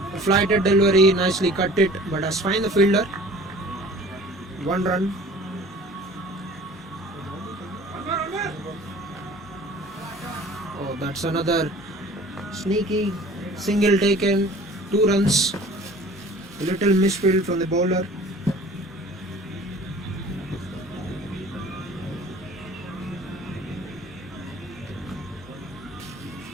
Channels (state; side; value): normal; both; correlation 0.47